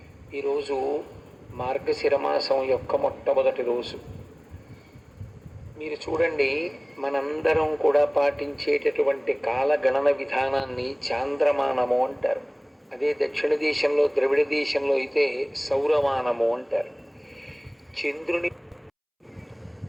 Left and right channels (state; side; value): identical; both; correlation 1.00